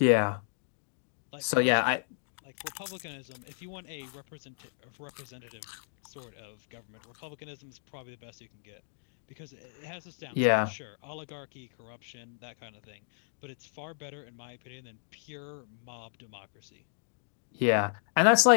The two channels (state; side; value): silent; right; digital silence